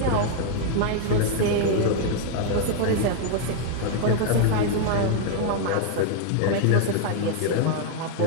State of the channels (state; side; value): different; both; correlation 0.00